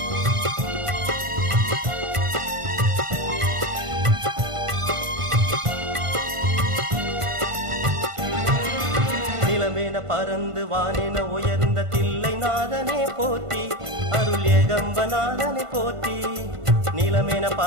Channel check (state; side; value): late; left; 1.5 ms